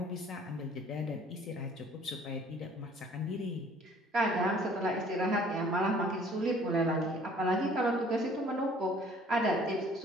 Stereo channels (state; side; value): normal; both; correlation 0.55